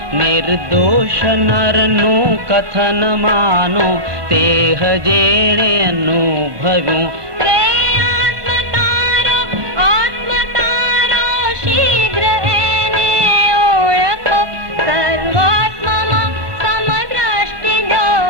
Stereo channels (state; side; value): late; left; 1.5 ms